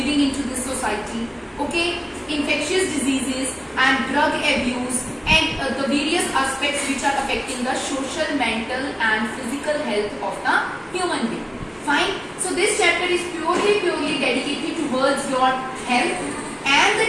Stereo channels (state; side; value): identical; both; correlation 1.00